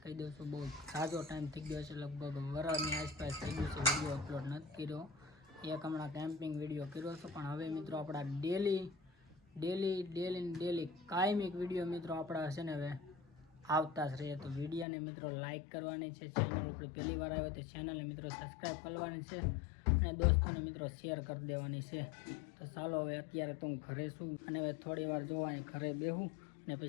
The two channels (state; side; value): drops out; right; at 14.9 s